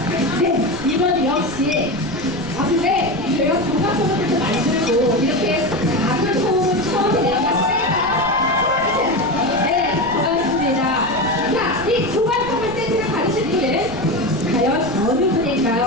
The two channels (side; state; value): right; noise; rumble, 17 dB below the sound